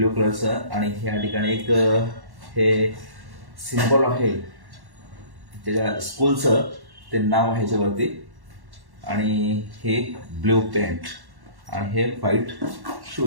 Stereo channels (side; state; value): left; late; 1.1 ms